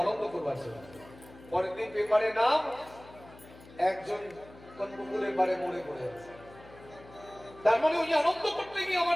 আনন্দ করবার জন্য, পরের দিন পেপারে নাম, একজন কোন পুকুরের পাড়ে মরে পড়ে আছে। তার মানে ওই আনন্দ করতে গিয়ে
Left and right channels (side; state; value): left; noise; hum, 21 dB below the sound